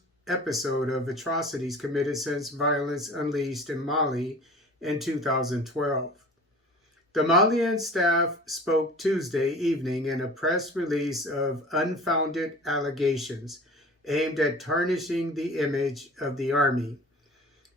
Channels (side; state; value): both; normal; correlation 0.42